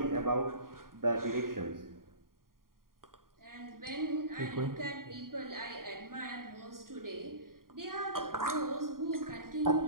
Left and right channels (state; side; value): late; left; 0.91 ms